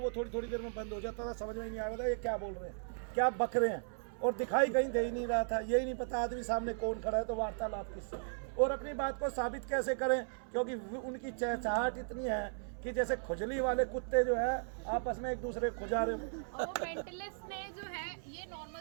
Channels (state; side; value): silent; left; 53 dB below the other